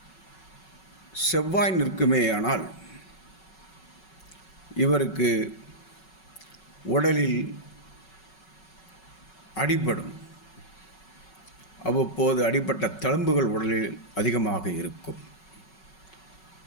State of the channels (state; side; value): late; right; 5.4 ms